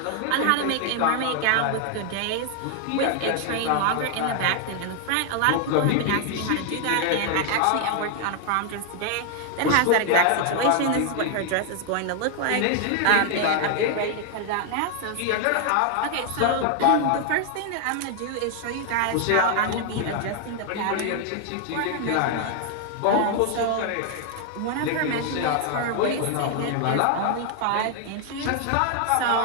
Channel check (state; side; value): different; both; correlation 0.00